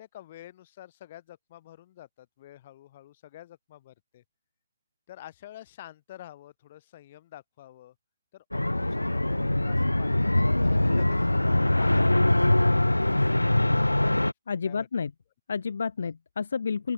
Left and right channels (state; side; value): inverted; both; correlation -0.99